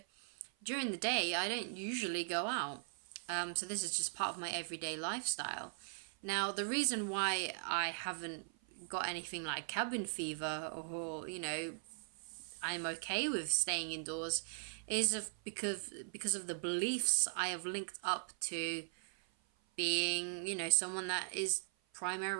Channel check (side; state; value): left; silent; 51 dB below the other